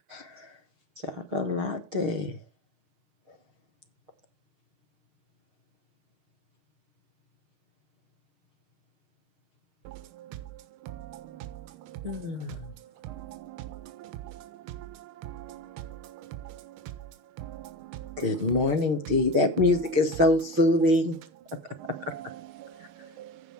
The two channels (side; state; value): left; late; 6.5 ms